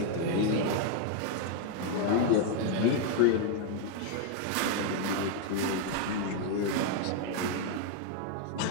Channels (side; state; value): both; different; correlation 0.00